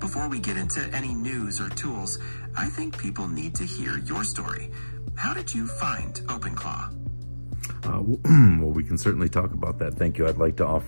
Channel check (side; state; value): both; inverted; correlation -1.00